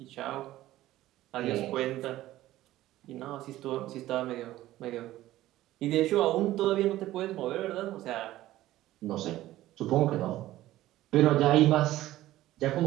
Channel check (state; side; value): quieter; left; 15.2 dB